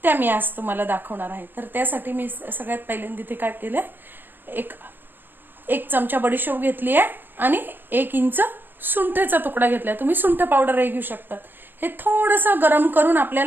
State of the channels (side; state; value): left; late; 0.095 ms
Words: त्या मी आज तुम्हाला दाखवणार आहे। तर त्यासाठी मी सगळ्यात पहिल्यांदा इथे काय केलंय, एक चमचा बडीशोप घेतली आहे आणि 1 इंच सुंठेचा तुकडा घेतलाय। तुम्ही सुंठ पावडरही घेऊ शकता। हे थोडंसं गरम करून